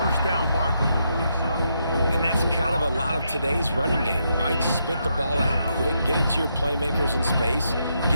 down marker. And that's kind of a lot of today's running game, right? Spit the ball out quick, get it to your playmakers in space,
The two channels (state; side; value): inverted; both; correlation -0.79